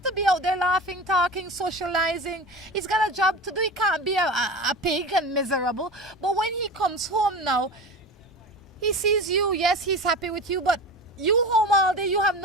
to be out there laughing, talking, socializing. He's got a job to do. He can't be a pig and miserable. But when he comes home now, he sees you. Yes, he's happy with you, but you home all day, you have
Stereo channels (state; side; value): normal; both; correlation 0.30